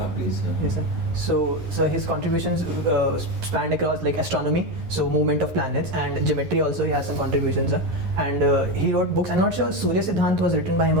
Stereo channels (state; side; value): late; left; 11 ms